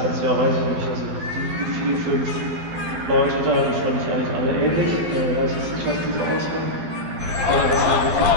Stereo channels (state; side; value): late; left; 12 ms